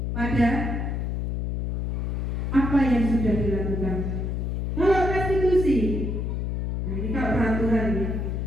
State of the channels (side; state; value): left; noise; hum, 2 dB below the sound